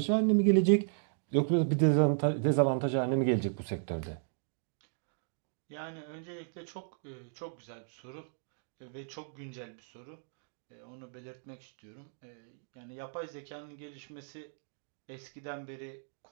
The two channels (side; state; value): left; silent; digital silence